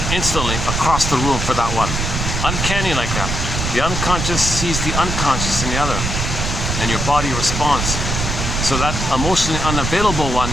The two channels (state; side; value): noise; right; rumble, 2 dB below the sound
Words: instantly across the room for that one. Uncanny like that. The unconscious sees the unconscious in the other, and your body responds. So that emotionally unavailable one,